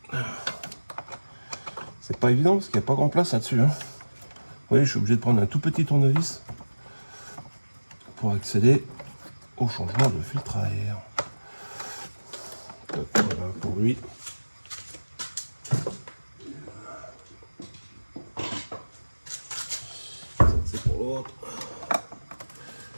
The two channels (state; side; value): inverted; both; correlation -1.00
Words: C'est pas évident parce qu'il n'y a pas grand place là-dessus. Hein. Vous voyez, je suis obligé de prendre un tout petit tournevis pour accéder au changement de filtre à air. Donc, voilà pour lui. C'est pour l'autre.